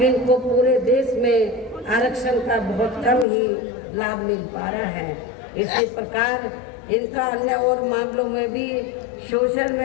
इनको पूरे देश में आरक्षण का बहुत कम ही लाभ मिल पा रहा है। इसी प्रकार इनका अन्य और मामलों में भी शोषण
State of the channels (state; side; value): drops out; right; at 3.2 s